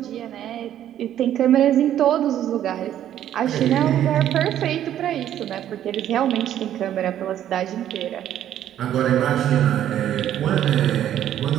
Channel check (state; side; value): quieter; left; 11.2 dB